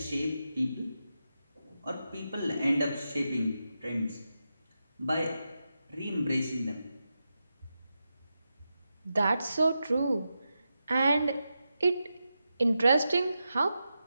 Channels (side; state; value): both; inverted; correlation -0.89